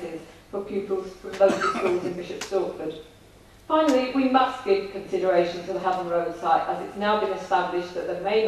for pupils from local schools in Bishop Stortford. Finally, we must give consideration to the Haven Road site, as it's now been established that there may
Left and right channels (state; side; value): identical; both; correlation 1.00